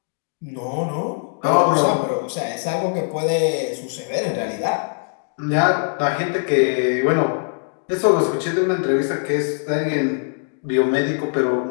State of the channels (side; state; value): right; silent; 62 dB below the other